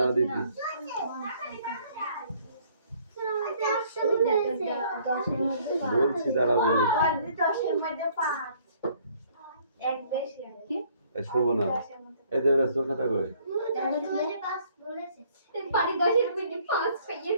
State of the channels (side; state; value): both; inverted; correlation -0.61